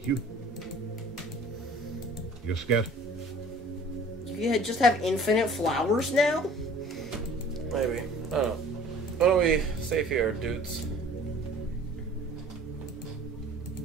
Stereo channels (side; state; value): both; normal; correlation 0.49